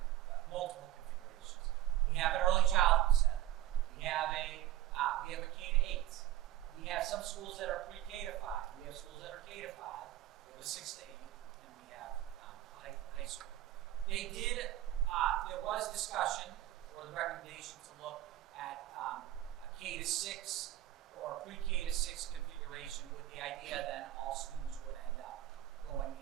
multiple configurations. We have an early childhood center. We have a K-8. We have some schools that are pre-K to 5. We have schools that are K to 5. We have a 6 to 8, and we have high school. There was discussion or the recommendation to look at a K to 6 or a pre-K to 6 configuration, with the idea then all students would end up going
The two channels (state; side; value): quieter; left; 13.5 dB